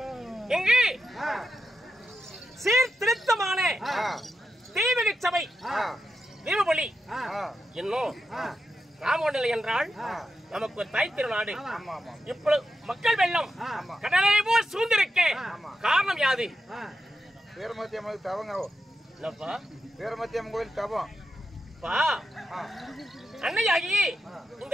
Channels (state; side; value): normal; both; correlation 0.87